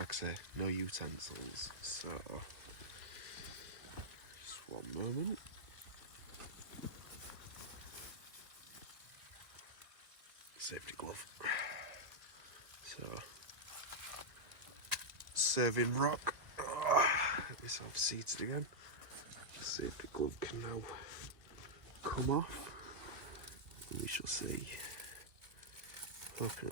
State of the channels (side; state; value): left; late; 1.8 ms